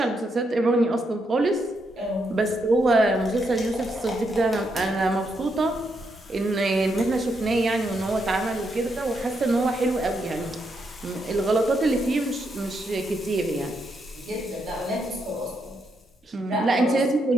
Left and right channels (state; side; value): normal; both; correlation 0.80